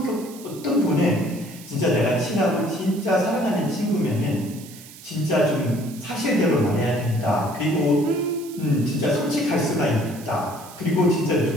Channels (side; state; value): right; noise; hiss, 18 dB below the sound